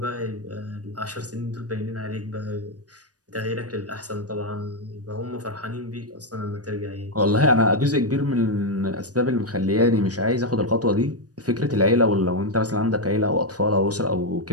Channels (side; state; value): left; late; 0.68 ms